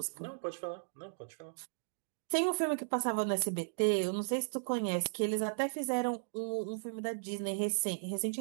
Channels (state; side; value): silent; left; digital silence